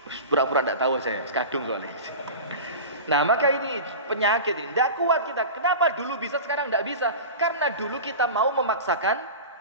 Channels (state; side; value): inverted; both; correlation -0.31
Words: Pura-pura enggak tahu saya, sekadung soalnya. Nah, maka ini penyakit ini. Enggak kuat kita. Kenapa dulu bisa sekarang enggak bisa? Karena dulu kita mau memaksakan